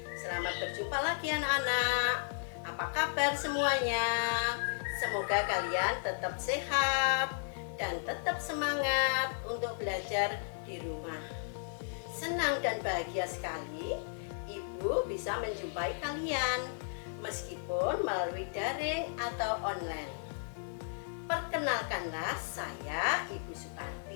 Selamat berjumpa lagi anak-anak. Apa kabar semuanya? Semoga kalian tetap sehat dan tetap semangat untuk belajar di rumah. Senang dan bahagia sekali Ibu bisa menjumpai kalian meskipun melalui daring atau online. Perkenalkanlah, saya Ibu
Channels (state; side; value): silent; right; digital silence